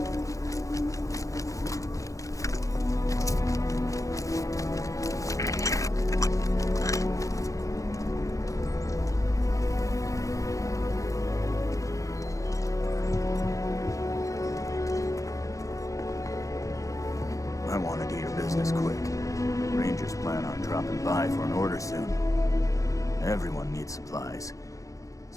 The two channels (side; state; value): right; late; 0.16 ms